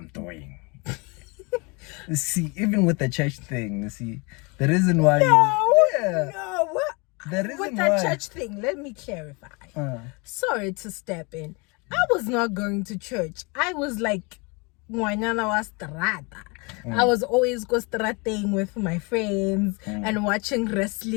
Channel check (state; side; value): quieter; right; 29.4 dB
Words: doing. You see, even with the church thing, you see, the reason why No, what? The reason With that why church thing, let me clarify. Sorry to step in. I was not going to church. I was like, ngwanyana wa strata. I was always go strating with my friends and watching